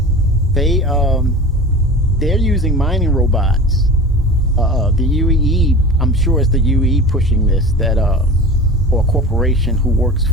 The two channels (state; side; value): normal; both; correlation 0.35